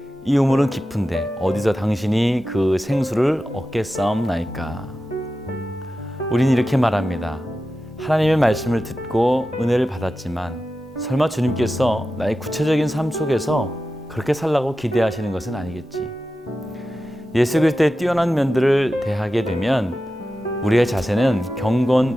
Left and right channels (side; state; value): both; normal; correlation 0.92